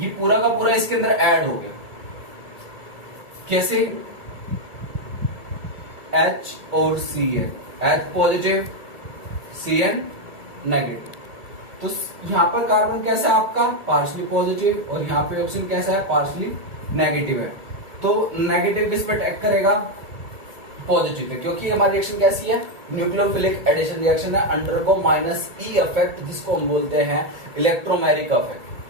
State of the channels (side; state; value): left; late; 1.6 ms